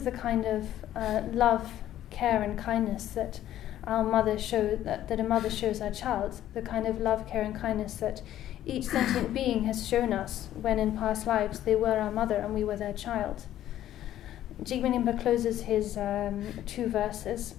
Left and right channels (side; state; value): right; quieter; 12.4 dB